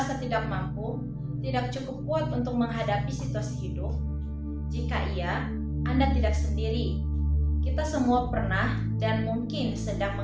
tidak mampu, tidak cukup kuat untuk menghadapi situasi hidup? Jika iya, Anda tidak sendiri. Kita semua pernah dan mungkin sedang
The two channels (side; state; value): both; identical; correlation 1.00